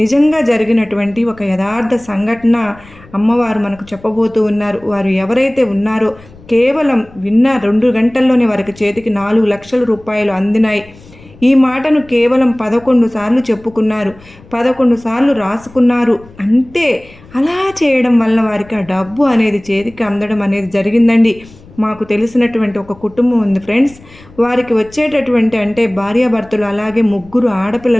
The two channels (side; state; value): left; noise; rumble, 23 dB below the sound